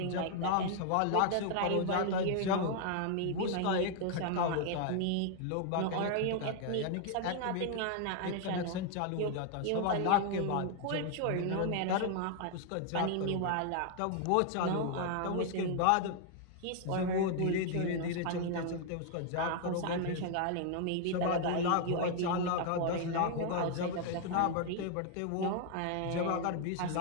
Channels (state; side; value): different; both; correlation 0.00